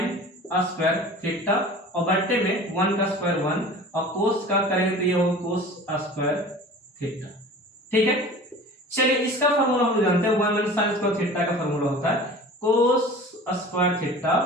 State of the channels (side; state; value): both; normal; correlation 0.40